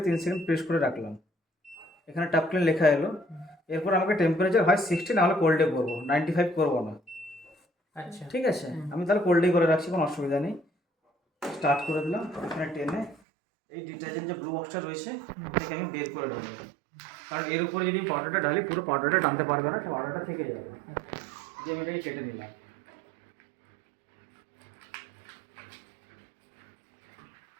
3 সেকেন্ড প্রেস করে রাখলাম। এখানে টাপ ক্লিন লেখা এলো। এরপর আমাকে টেম্পারেচার হয় 60, নাহলে কোল্ডে করবো, 95 করবো না। আচ্ছা ঠিক আছে, আমি তাহলে কোল্ডেই করে রাখছি, কোনো অসুবিধা নেই। স্টার্ট করে দিলাম। এখানে টেনে এই ডিটারজেন্ট যে ব্লু বক্সটা রয়েছে এটাকে আমি বের করে দেবো, কারণ এর উপরে যদি পাউডারটা ঢালি পুরো পাউডারটা টানতে পারবে না, পাউডারটা থেকে যাবে। যে আমি এটাকে কেটে নিলাম।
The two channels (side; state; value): left; drops out; at 13.2 s